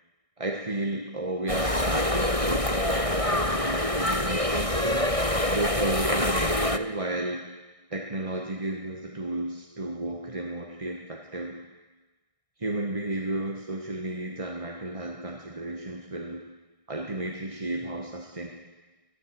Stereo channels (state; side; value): late; left; 1.6 ms